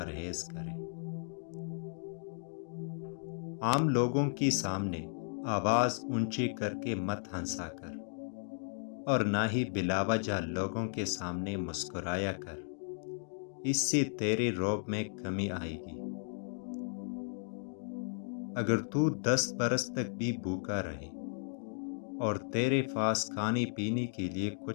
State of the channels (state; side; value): silent; right; digital silence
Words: کریں۔ عام لوگوں کے سامنے آواز اونچی کر کے مت ہنسا کر، اور نہ ہی بلا وجہ لوگوں کے سامنے مسکرایا کر، اس سے تیرے رعب میں کمی آئے گی۔ اگر تو 10 برس تک بھی بھوکا رہے اور تیرے پاس کھانے پینے کے لیے